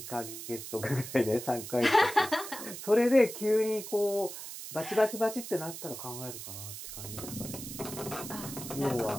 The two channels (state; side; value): noise; right; hiss, 10 dB below the sound